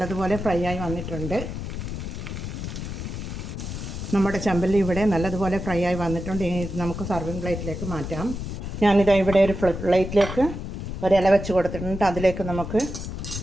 ഫ്രൈ ആയി വന്നിട്ടുണ്ട്. നമ്മുടെ ചെമ്പല്ലി ഇവിടെ നല്ലതുപോലെ ഫ്രൈ ആയി വന്നിട്ടുണ്ട്. ഇനി നമുക്ക് സർവിങ് പ്ലേറ്റിലേക്ക് മാറ്റാം. ഞാനിതാ ഇവിടെ ഒരു പ്ലേറ്റിലേക്ക് ഒരില വെച്ച് കൊടുത്തിട്ടുണ്ട്. അതിലേക്ക് നമുക്ക്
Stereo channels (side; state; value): left; noise; rumble, 6 dB below the sound